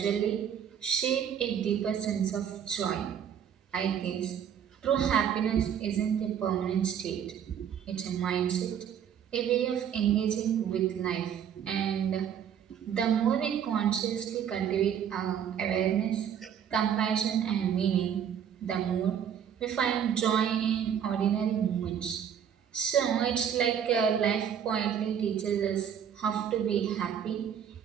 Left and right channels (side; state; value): left; quieter; 8.7 dB